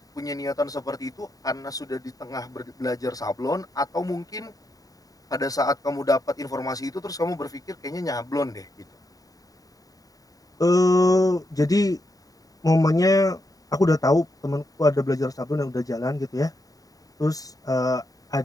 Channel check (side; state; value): right; late; 0.18 ms